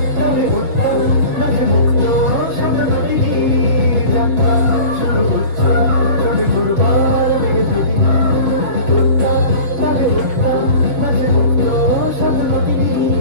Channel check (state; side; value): late; left; 6.9 ms